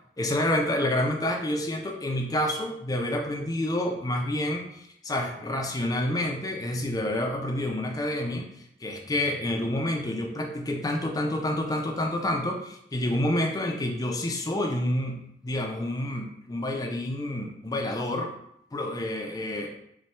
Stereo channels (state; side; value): normal; both; correlation 0.57